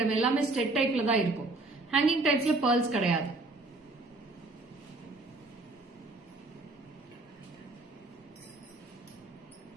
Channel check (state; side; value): quieter; left; 3.1 dB